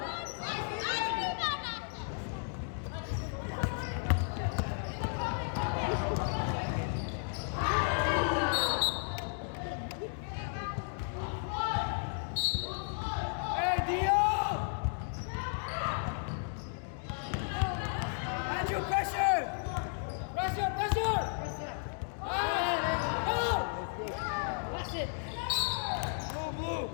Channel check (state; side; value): silent; right; 55 dB below the other